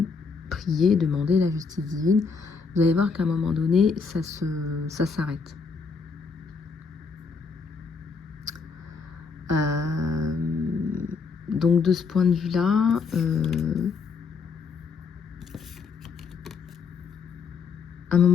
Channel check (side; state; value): right; quieter; 5.0 dB